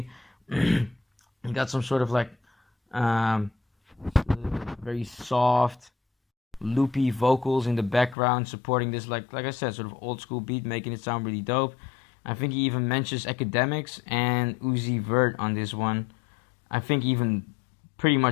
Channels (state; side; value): drops out; right; at 8.2 s